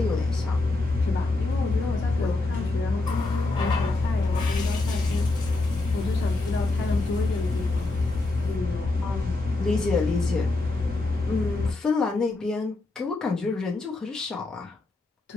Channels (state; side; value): quieter; right; 3.1 dB